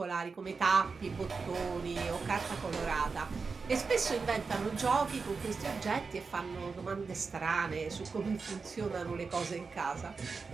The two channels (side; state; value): left; quieter; 4.7 dB